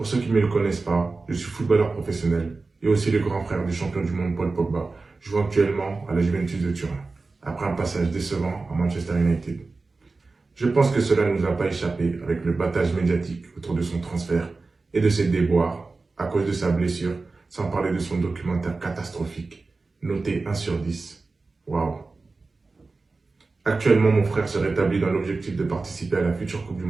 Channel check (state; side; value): quieter; left; 3.8 dB